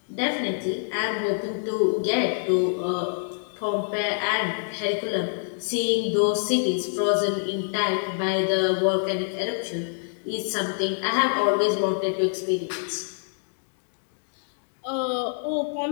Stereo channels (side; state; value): right; silent; digital silence